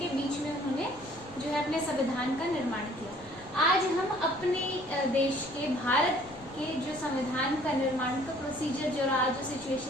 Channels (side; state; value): left; noise; rumble, 21 dB below the sound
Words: बीच में उन्होंने जो है अपने संविधान का निर्माण किया। आज हम अपने देश के भारत के जो संविधान का निर्माण का प्रोसीजर जो रहा, जो